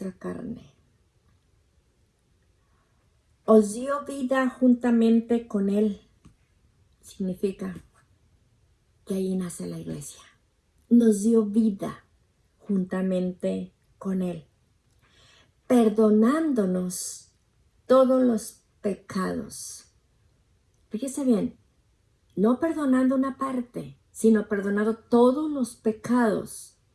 carne, os dio vida juntamente con Él. Significa que ahí nace la iglesia. Nos dio vida juntamente con Él, perdonándonos todos los pecados. Fíjese bien, no perdonando una parte, sino perdonando todos los pecados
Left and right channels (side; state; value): both; identical; correlation 1.00